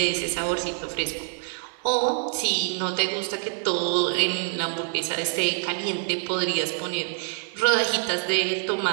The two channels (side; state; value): left; silent; 61 dB below the other